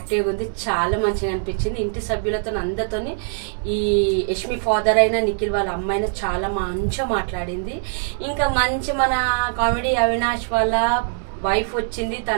ఉంది, చాలా మంచిగా అనిపించింది. ఇంటి సభ్యులతో అందరితో ఈ యష్మి ఫాదర్ అయినా నిఖిల్ వాళ్ళ అమ్మ అయినా చాలా మంచిగా మాట్లాడింది. ఇంకా మంచి మన కామెడీ అవినాష్ వాళ్ళ వైఫ్ వచ్చింది,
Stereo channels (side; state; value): left; silent; 64 dB below the other